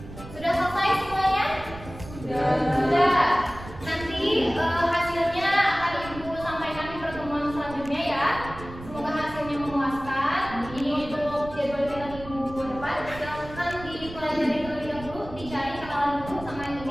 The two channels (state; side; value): noise; right; rumble, 14 dB below the sound